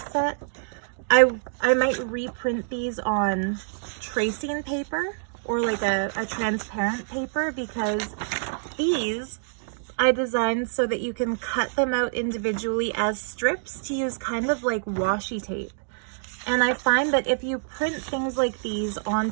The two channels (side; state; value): left; silent; digital silence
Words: set. I might reprint these on tracing paper or like a transparent paper, because these I designed so that you can cut them out individually as strips to use kind of like washi tape. And I find that if you print things like these